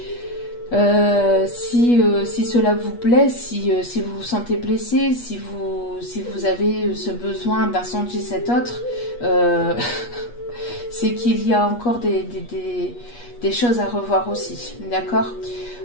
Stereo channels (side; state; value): right; late; 8.3 ms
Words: Si cela vous plaît, si vous vous sentez blessé, si vous avez ce besoin d'incendier cet autre, c'est qu'il y a encore des choses à revoir aussi, d'accord?